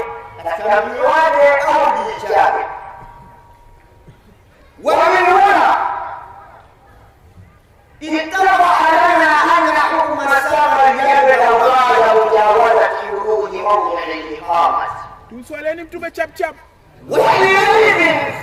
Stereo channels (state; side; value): identical; both; correlation 1.00